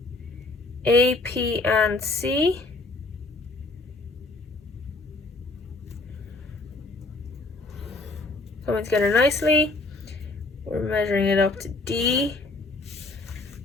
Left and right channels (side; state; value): right; quieter; 3.2 dB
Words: A, P, and C. Coming together nicely. We're measuring it up to D.